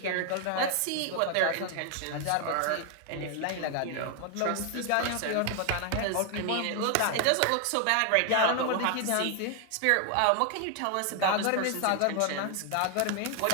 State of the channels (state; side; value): different; both; correlation 0.00